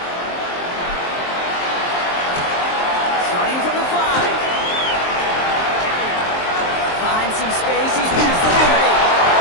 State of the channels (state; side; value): late; right; 23 ms